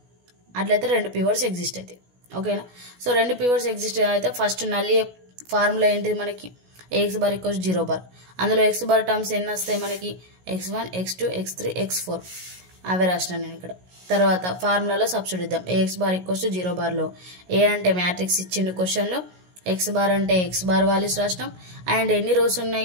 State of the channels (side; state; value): left; late; 16 ms